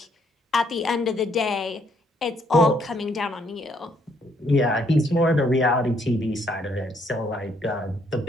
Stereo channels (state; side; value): normal; both; correlation 0.69